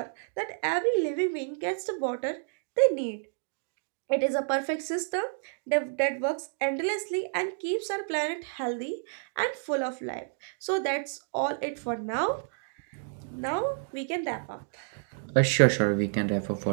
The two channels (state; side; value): silent; left; digital silence